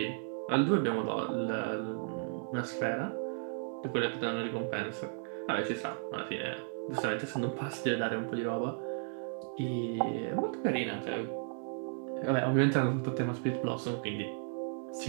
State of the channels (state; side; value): silent; left; digital silence